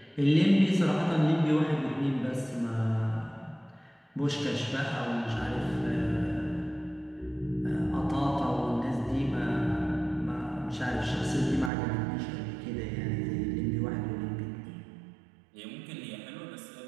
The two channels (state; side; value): drops out; left; at 11.7 s